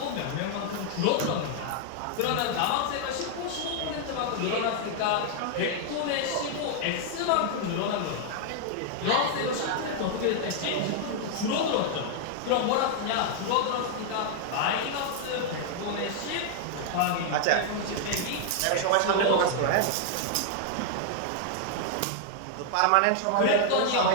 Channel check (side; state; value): both; different; correlation 0.00